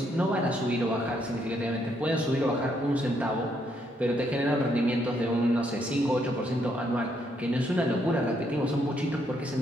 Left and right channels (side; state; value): both; normal; correlation 0.74